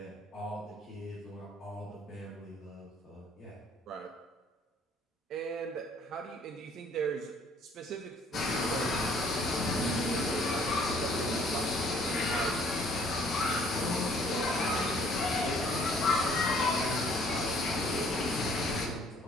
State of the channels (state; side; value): normal; both; correlation 0.60